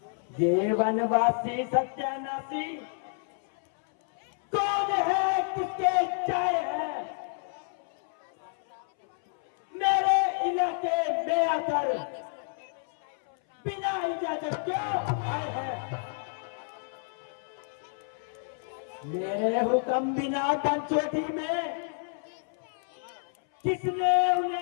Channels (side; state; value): right; silent; 58 dB below the other